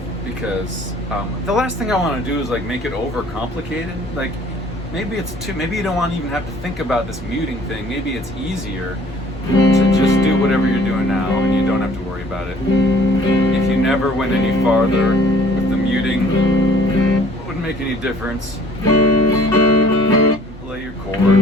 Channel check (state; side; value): normal; both; correlation 0.54